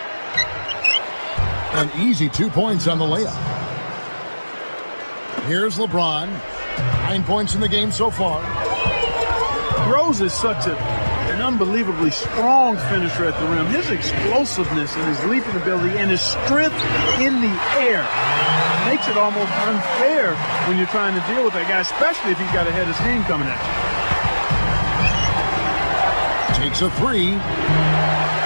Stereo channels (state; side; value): inverted; both; correlation -1.00